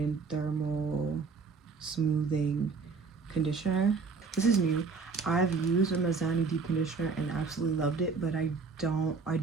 Thermal Smoothing Conditioner. This is new. I've used a Mizani deep conditioner and absolutely loved it, but I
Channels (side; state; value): left; quieter; 4.8 dB